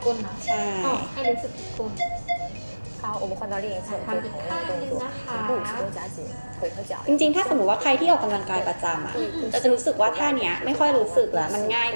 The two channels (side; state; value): both; inverted; correlation -1.00